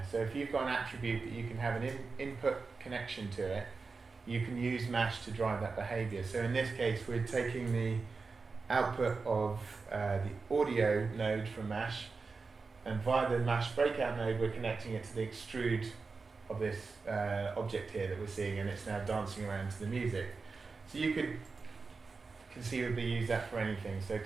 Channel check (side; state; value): left; quieter; 4.4 dB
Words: So if you've got an attribute that you can have an input connection to it, you can use Mesh to drive that behavior. So in this case, we're taking the output of the audio node from Mesh, and via the Mesh breakout node, we're connecting it to the extrude of this object here that we're seeing, and it's now dancing around to the music. So you could conceivably use that for anything. So it